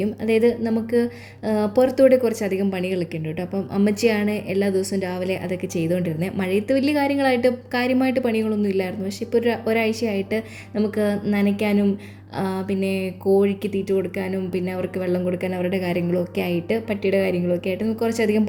അതായത് നമുക്ക് പുറത്തൂടെ കുറച്ചധികം പണികളൊക്കെ ഉണ്ട് കേട്ടോ. അപ്പം അമ്മച്ചിയാണ് എല്ലാ ദിവസവും രാവിലെ അതൊക്കെ ചെയ്തുകൊണ്ടിരുന്നത്. മഴയത്ത് വലിയ കാര്യമായിട്ട് പണികളൊന്നും ഇല്ലായിരുന്നു. പക്ഷേ ഇപ്പോൾ ഒരാഴ്ചയായിട്ട് നമുക്ക് നനയ്ക്കാനും പിന്നെ കോഴിക്ക് തീറ്റ കൊടുക്കാനും പിന്നെ അവർക്ക് വെള്ളം കൊടുക്കാനും അവരുടെ കാര്യങ്ങളൊക്കെ ആയിട്ട് പട്ടിയുടെ കാര്യങ്ങളൊക്കെ ആയിട്ട് നമുക്ക് കുറച്ചധികം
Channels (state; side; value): identical; both; correlation 1.00